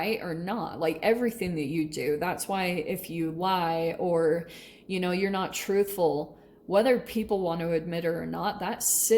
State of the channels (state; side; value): identical; both; correlation 1.00